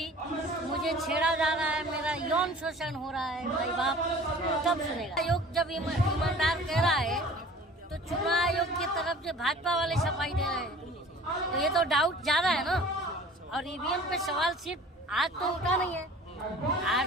मुझे छेड़ा जा रहा है, मेरा यौन शोषण हो रहा है, भाई बाप तब सुनेगा। आयोग जब ईमानदार कह रहा है तो चुनाव आयोग की तरफ से भाजपा वाले सफाई दे रहे हैं, तो ये तो डाउट ज्यादा है ना। और ईवीएम पे सवाल सिर्फ आज तो उठा नहीं है,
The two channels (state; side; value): normal; both; correlation 0.46